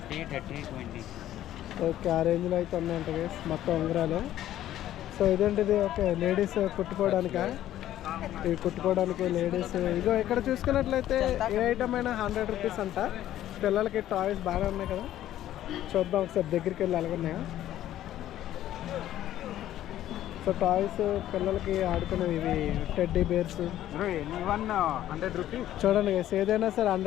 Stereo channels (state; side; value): quieter; right; 12.7 dB